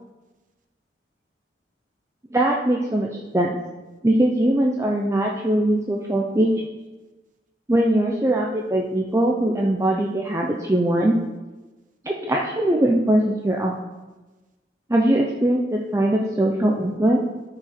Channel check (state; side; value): normal; both; correlation 0.80